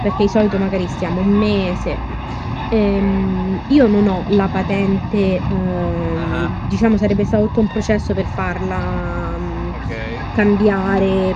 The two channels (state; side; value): identical; both; correlation 1.00